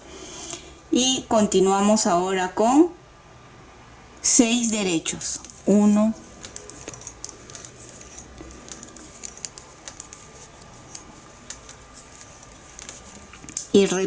Y continuamos ahora con 6 derechos. 1, 2 y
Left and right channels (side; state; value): both; identical; correlation 1.00